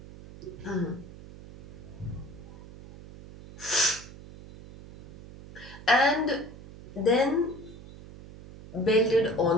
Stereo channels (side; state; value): right; noise; hum, 17 dB below the sound